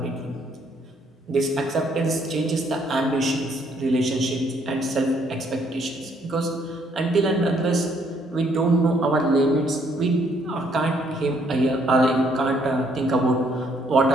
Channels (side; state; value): both; normal; correlation 0.68